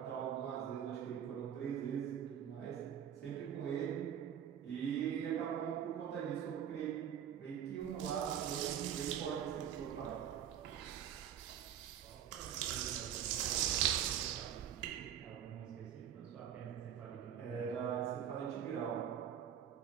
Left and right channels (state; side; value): quieter; left; 9.5 dB